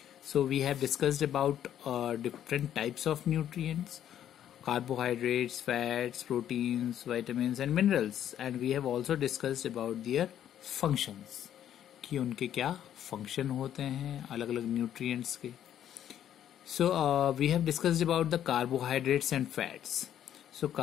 So we have discussed about different types of nutrients. Carbohydrates, fats, proteins, vitamins and minerals, and we have also discussed about their functions कि उनके क्या function होते हैं अलग अलग nutrients के. So we have discussed about the carbohydrates and fats. So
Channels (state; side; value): quieter; right; 10.5 dB